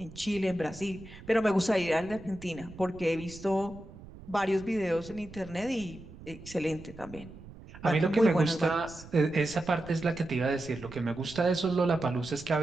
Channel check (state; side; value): noise; right; rumble, 17 dB below the sound